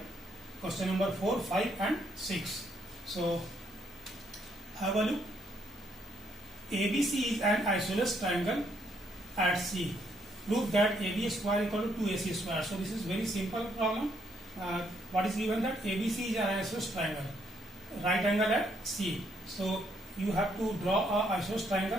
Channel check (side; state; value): both; normal; correlation 0.72